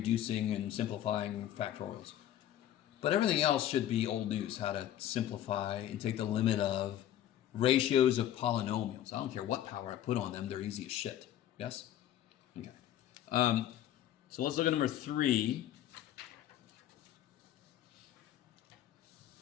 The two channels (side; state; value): right; quieter; 11.8 dB